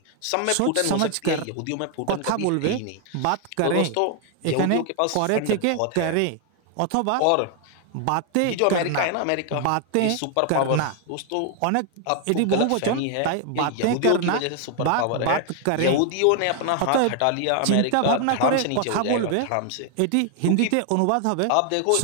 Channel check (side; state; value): both; different; correlation 0.00